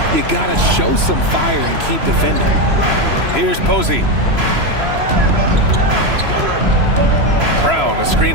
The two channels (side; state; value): left; late; 3.0 ms